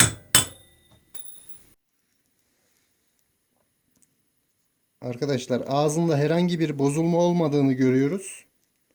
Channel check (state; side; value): identical; both; correlation 1.00